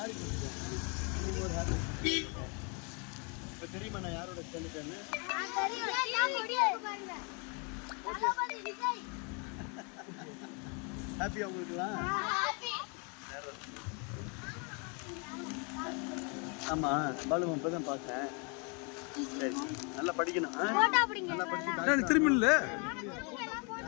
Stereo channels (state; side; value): quieter; right; 34.5 dB